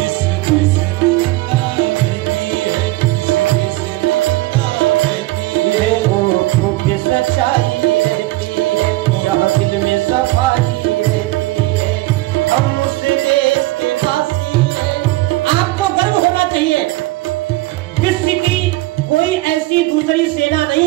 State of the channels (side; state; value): left; quieter; 19.2 dB